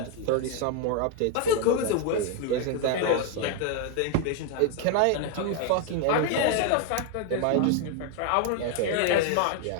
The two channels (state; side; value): different; both; correlation 0.01